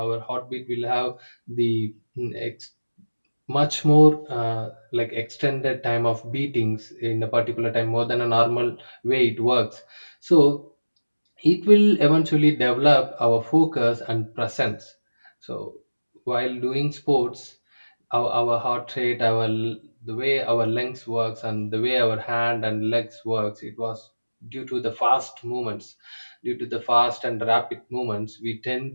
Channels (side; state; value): both; inverted; correlation -1.00